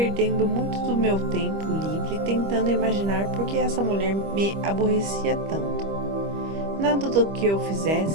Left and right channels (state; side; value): late; left; 25 ms